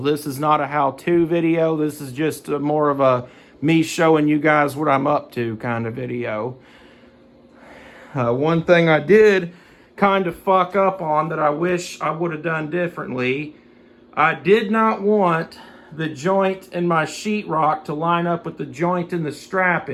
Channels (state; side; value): identical; both; correlation 1.00